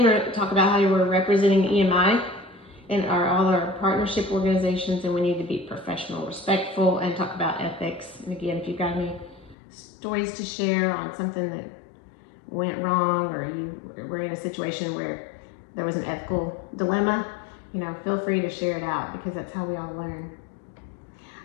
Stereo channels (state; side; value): drops out; right; at 9.6 s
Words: we're going to talk about how you were representing EMI and all our partnership organizations, and we need to be professional, respectful, and talk about ethics. And again, if you've got any stories to share on something that went wrong, or you were in a situation where there was an ethical dilemma, feel free to share it out, because that's how we all learn.